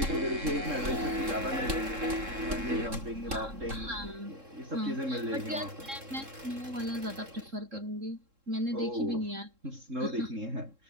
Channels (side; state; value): left; late; 3.7 ms